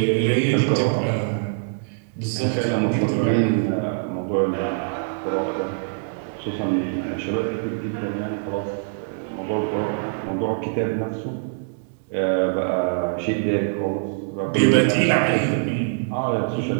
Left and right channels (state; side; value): silent; left; digital silence